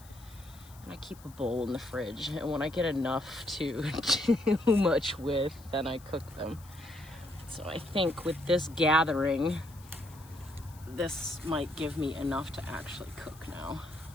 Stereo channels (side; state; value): left; noise; hiss, 23 dB below the sound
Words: And I keep a bowl in the fridge, and when I get enough to too much with, then I cook them. So I think with this gathering, this might give me enough to actually cook now.